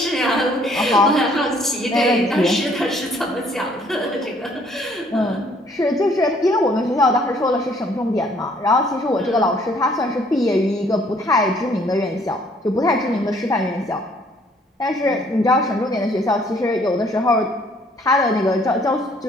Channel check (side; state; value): both; normal; correlation 0.62